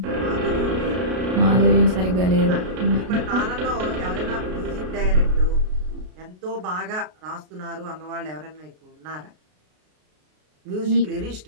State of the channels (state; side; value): late; left; 33 ms